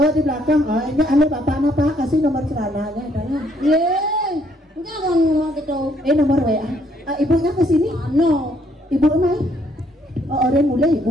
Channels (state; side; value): normal; both; correlation 0.68